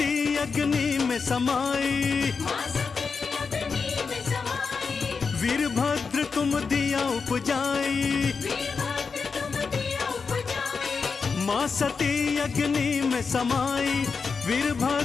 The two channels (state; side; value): quieter; right; 5.2 dB